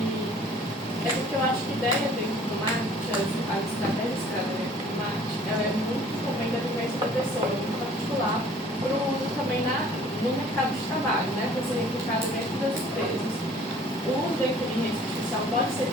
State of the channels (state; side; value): normal; both; correlation 0.53